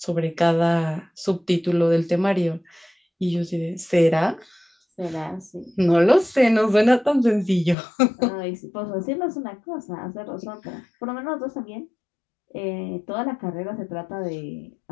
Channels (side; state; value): right; drops out; at 7.8 s